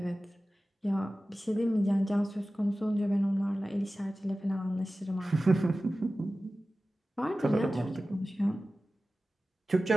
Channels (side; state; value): both; normal; correlation 0.96